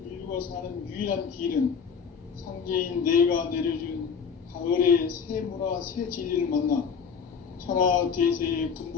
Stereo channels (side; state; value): right; quieter; 6.3 dB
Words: 인류가 사는 유일한 길은 상제인 내가 내려준 가을의 새 문화, 새 진리를 만나 천하대세의